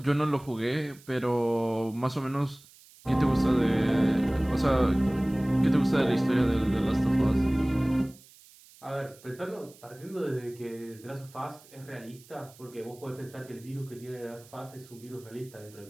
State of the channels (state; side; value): noise; right; hiss, 24 dB below the sound